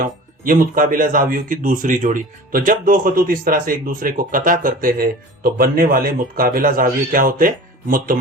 हूँ, ये मुतकाबिला जावियों की दूसरी जोड़ी। तो जब दो खतूत इस तरह से एक दूसरे को कता करते हैं तो बनने वाले मुतकाबिला जाविये क्या होते हैं?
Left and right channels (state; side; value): normal; both; correlation 0.39